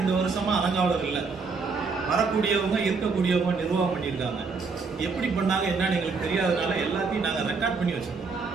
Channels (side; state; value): left; quieter; 4.7 dB